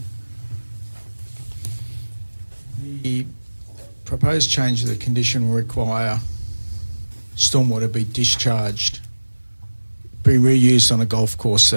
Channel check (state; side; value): inverted; both; correlation -1.00